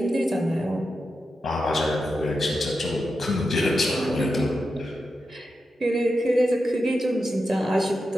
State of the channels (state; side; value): normal; both; correlation 0.89